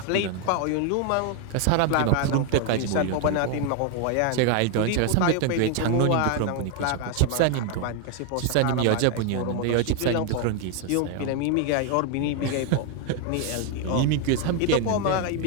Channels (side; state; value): both; different; correlation 0.01